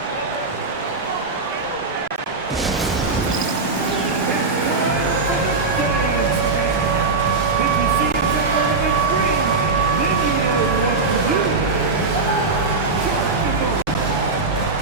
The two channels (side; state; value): left; quieter; 4.0 dB